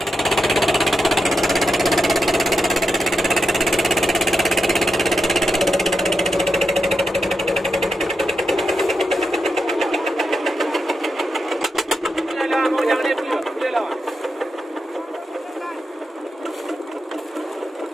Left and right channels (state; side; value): normal; both; correlation 0.86